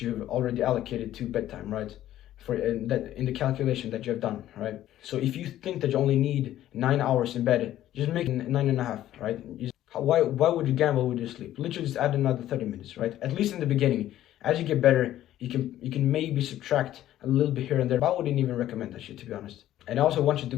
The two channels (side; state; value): right; quieter; 13.0 dB